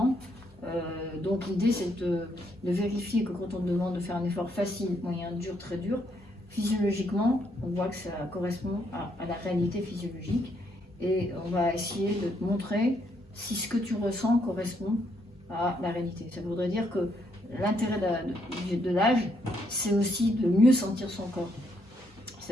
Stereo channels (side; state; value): both; normal; correlation 0.74